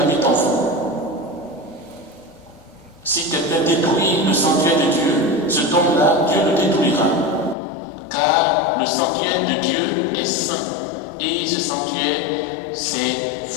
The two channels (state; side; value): drops out; right; at 7.6 s